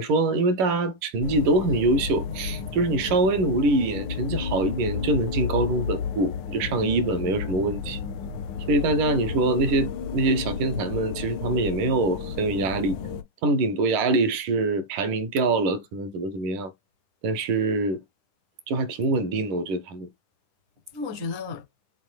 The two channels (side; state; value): left; late; 10 ms